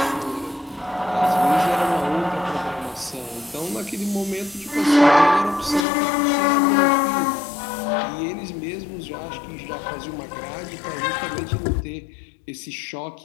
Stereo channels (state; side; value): drops out; right; at 5.9 s